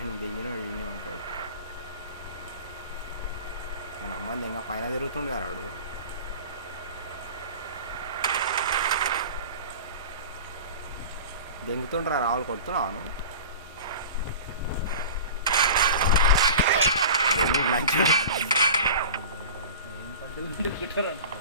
దిగిన ఈయనే ఉంటాడు. మన అమ్మని ఇంకా పైన తిరుగుతుండే వాడు. దెంగుతుండ్రా రావులు కొడుతున్నాను దెంగి లంచ్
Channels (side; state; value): both; inverted; correlation -0.36